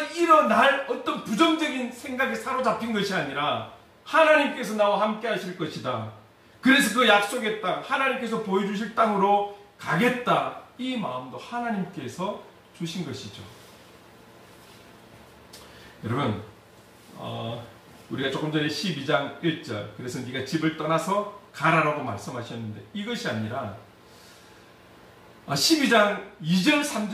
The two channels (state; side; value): identical; both; correlation 1.00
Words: 일어날 어떤 부정적인 생각에 사로잡힌 것이 아니라 하나님께서 나와 함께 하실 것이다. 그래서 그 약속의 땅, 하나님께서 보여주실 땅으로 가겠다. 이 마음도 하나님께서 주신 것이죠. 여러분, 우리가 조금 전에 12장 1절, 그래서 네가 집을 떠나서 가라라고 말씀하셨는데 이것이 아니라 12장 2절